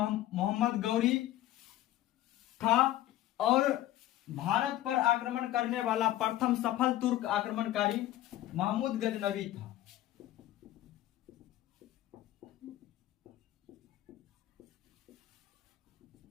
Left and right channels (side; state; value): right; quieter; 14.2 dB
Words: गौरी था, और भारत पर आक्रमण करने वाला प्रथम सफल तुर्क आक्रमणकारी महमूद गजनबी था।